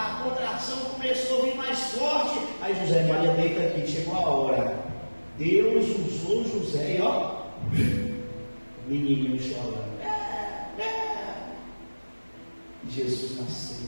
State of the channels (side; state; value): both; inverted; correlation -1.00